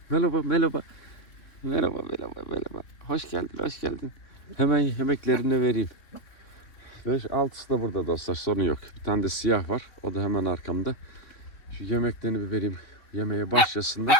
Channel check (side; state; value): right; late; 3.5 ms